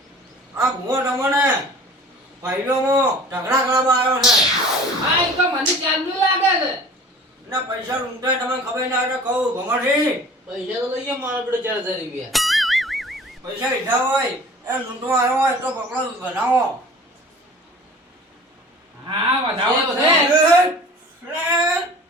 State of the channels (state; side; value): normal; both; correlation 0.44